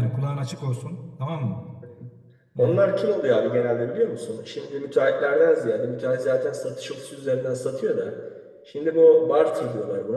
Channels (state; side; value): identical; both; correlation 1.00